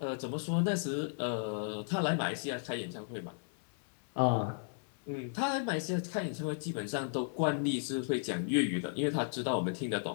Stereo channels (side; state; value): right; silent; 54 dB below the other